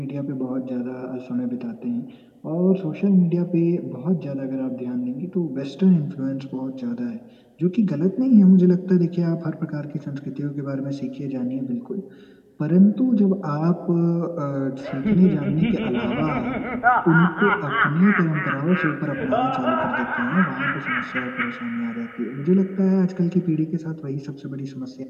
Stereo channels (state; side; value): identical; both; correlation 1.00